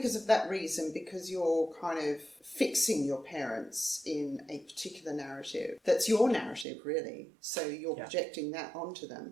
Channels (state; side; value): drops out; left; at 6.7 s